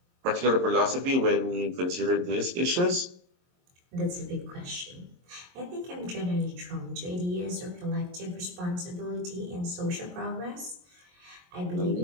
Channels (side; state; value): left; late; 22 ms